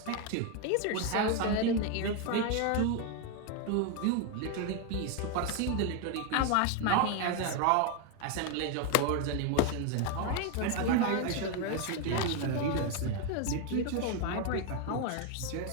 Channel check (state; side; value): different; both; correlation 0.01